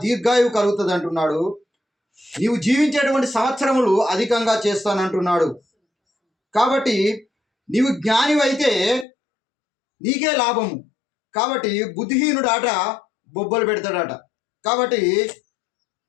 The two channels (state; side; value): drops out; right; at 9.1 s